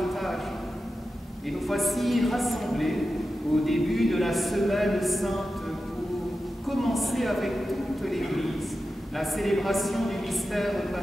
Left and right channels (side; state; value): both; normal; correlation 0.92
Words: Et nous voici rassemblés au début de la Semaine Sainte pour commencer avec toute l'Église la célébration du mystère